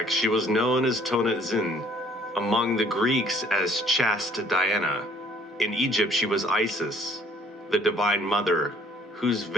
she was known as Tonantzin, among the Greeks as chaste Diana. In Egypt, she was Isis, the Divine Mother, whose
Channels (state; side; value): normal; both; correlation 0.59